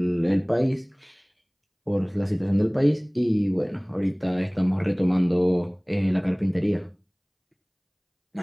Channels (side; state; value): both; identical; correlation 1.00